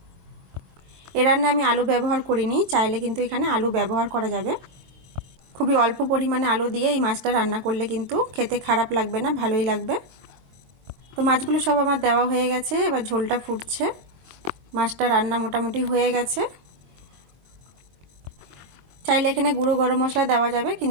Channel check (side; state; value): left; late; 23 ms